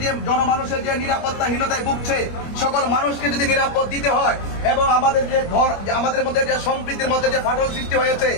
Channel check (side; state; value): right; late; 25 ms